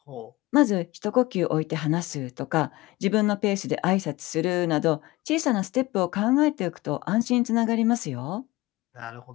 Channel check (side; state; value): right; quieter; 20.1 dB